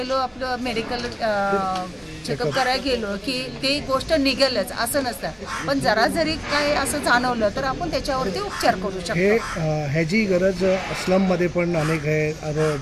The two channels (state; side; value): identical; both; correlation 1.00